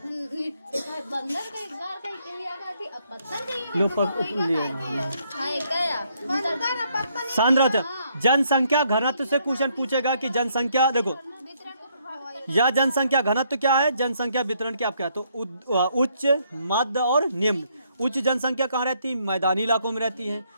बंदर का एक बार कहीं कहीं आ गई थी, अब पत्तन कहीं लो पत्तन सांद्र जनसंख्या घनत्व से क्वेश्चन पूछेगा कि जनसंख्या, देखो यह जनसंख्या घनत्व क्या है, जनसंख्या वितरण क्या क्या, तो उच्च, मध्य और निम्न। उच्च जनसंख्या कहाँ रहती है? मैदानी इलाकों में रहती है।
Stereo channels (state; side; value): inverted; both; correlation -0.71